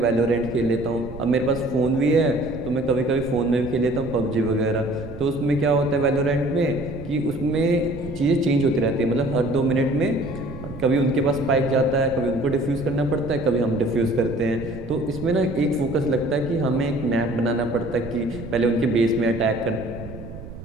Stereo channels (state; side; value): noise; right; rumble, 13 dB below the sound